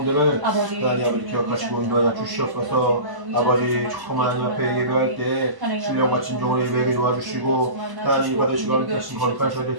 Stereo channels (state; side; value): late; left; 1.0 ms